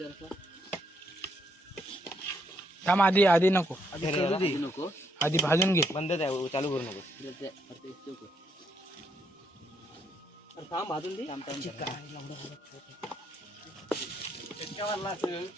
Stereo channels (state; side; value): normal; both; correlation 0.75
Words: थांब आधी आधी नको नको आधी भाजून घे. बंद आहे चालू करू नको थांब भाजून दे